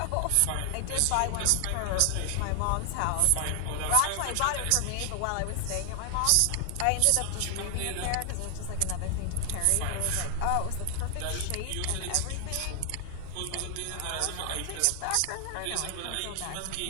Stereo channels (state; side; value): different; both; correlation 0.00